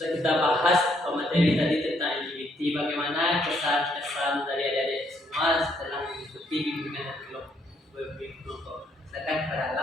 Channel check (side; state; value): both; normal; correlation 0.70